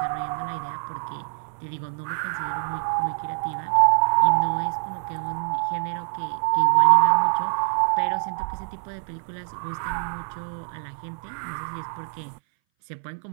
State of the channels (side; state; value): left; silent; 60 dB below the other